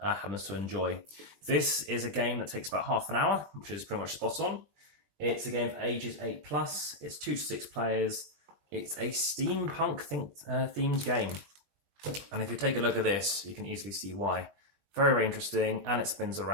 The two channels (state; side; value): late; left; 20 ms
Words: to enjoy. This is a game that takes about half an hour, which is pretty much spot on. It's a game for ages 8 plus. It's 2 to 6 players. It's a steampunk themed game. And if you take a look at this, you can easily see why. Very, very interesting, and it spins